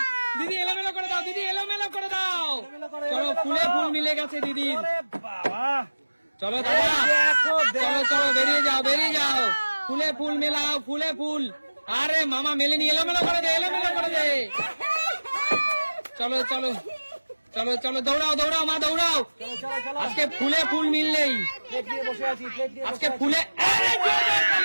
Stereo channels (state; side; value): inverted; both; correlation -1.00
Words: দিদি এলোমেলো করে দাও দিদি এলোমেলো করে দাও চলো ফুলে ফুল মিলে গেছে দিদি আরে বাবা চলো দাদা চলো চলো বেরিয়ে যাও ফুলে ফুল মেলাও ফুলে ফুল আরে মামা মেলেনি এলোমেলো করে দে চলো চলো চলো চলো দৌড়াও দৌড়াও মা দৌড়াও আজকে ফুলে ফুল মিললেই আজকে ফুলে